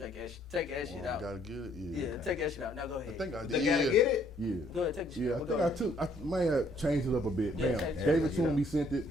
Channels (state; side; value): normal; both; correlation 0.65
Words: that shit out. Gotta get it. Yeah, take that shit out. Now go ahead. I think I did. They gotta get it? Yeah. Go ahead, take the shit Yeah, out. I Go think ahead. I might have changed it up a bit. Yeah, Bam. change it. Gave it to him, he sent it.